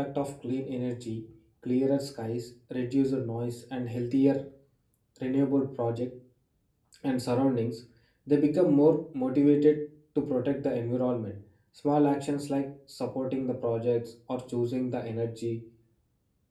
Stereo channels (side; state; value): both; identical; correlation 1.00